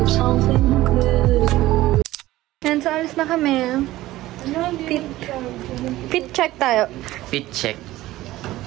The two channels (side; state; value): left; quieter; 16.5 dB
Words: of something good. And so, alis na kami. Fit check tayo. Fit check.